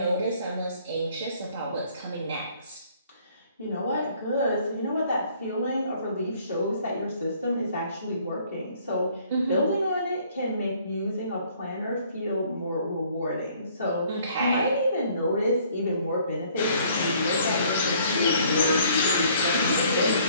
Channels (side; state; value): both; inverted; correlation -0.60